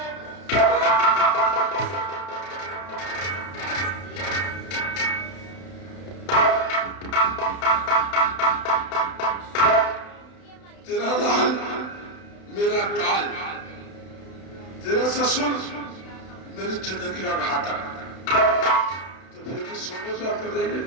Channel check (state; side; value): late; right; 31 ms